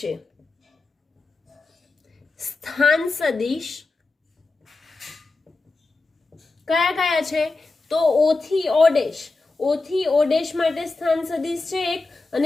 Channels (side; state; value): right; quieter; 3.5 dB